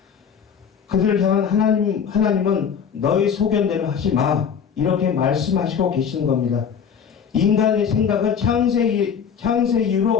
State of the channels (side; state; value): right; quieter; 7.2 dB